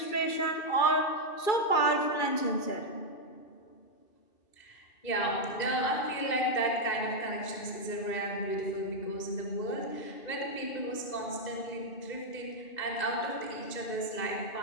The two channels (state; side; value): late; right; 2.6 ms